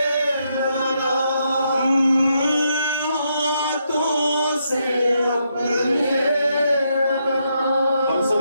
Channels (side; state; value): both; inverted; correlation -0.79